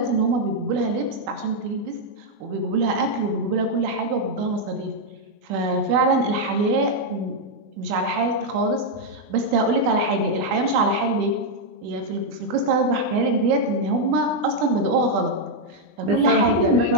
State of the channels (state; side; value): late; left; 20 ms